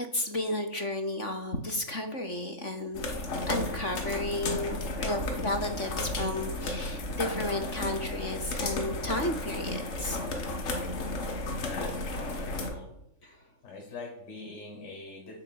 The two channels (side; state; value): right; late; 3.5 ms